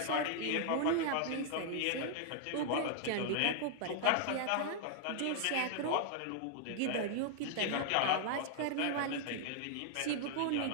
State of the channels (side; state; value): both; different; correlation 0.00